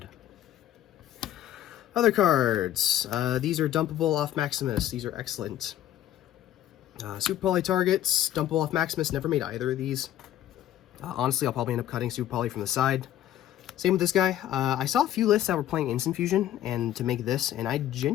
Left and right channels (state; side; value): quieter; right; 12.2 dB